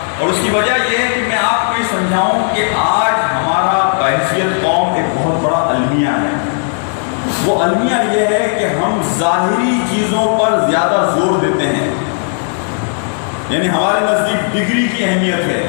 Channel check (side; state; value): right; silent; 63 dB below the other